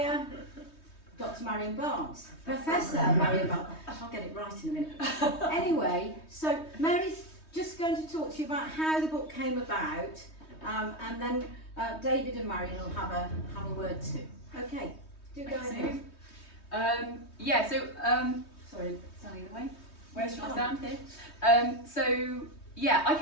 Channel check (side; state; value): right; late; 3.2 ms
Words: Dr. Marian Barnes, Professor Marian Barnes. I'll get it right in a minute. Anyway, so Mary's just going to talk to you about how the book came about, and then David and Marian will have a word too. Okay, do go ahead. Sorry, standing in the way. Where should I stand here? I